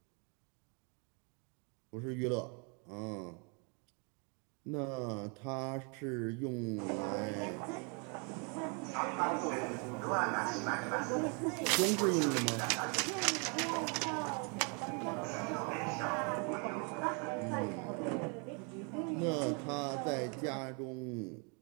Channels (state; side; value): quieter; left; 35.7 dB